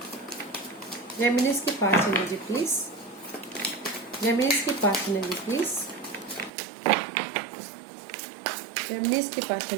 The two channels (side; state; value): left; drops out; at 6.5 s